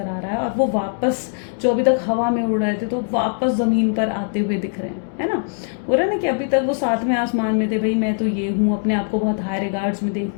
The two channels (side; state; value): right; silent; digital silence